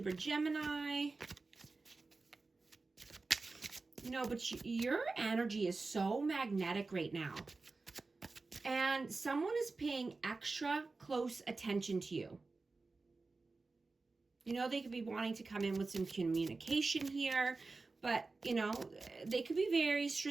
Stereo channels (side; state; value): left; quieter; 3.7 dB